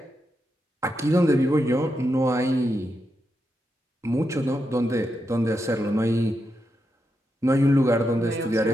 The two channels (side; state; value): both; normal; correlation 0.85